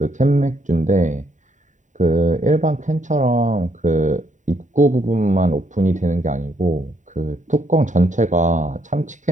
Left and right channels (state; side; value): late; left; 0.36 ms